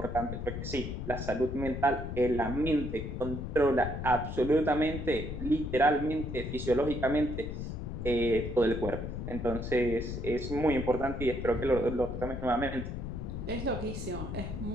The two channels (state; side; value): noise; left; rumble, 5 dB below the sound